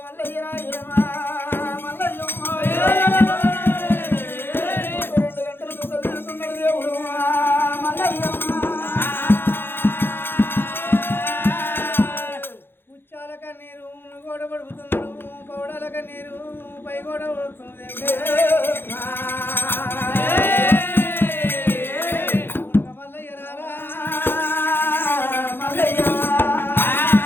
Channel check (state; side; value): late; right; 0.10 ms